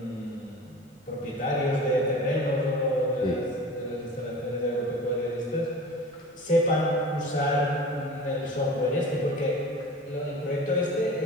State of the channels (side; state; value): both; normal; correlation 0.38